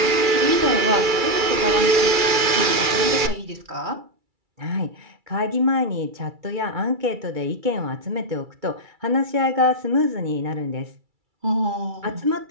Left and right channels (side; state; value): left; late; 2.4 ms